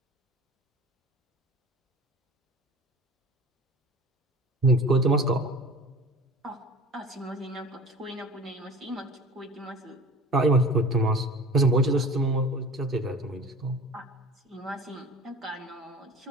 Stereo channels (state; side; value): normal; both; correlation 0.40